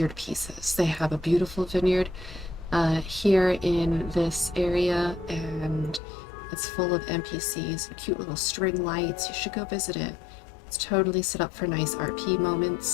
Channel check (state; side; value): drops out; right; at 6.0 s